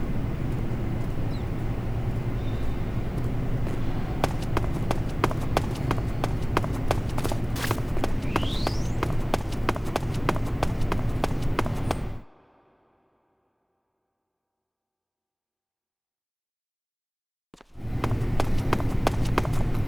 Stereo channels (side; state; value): both; identical; correlation 1.00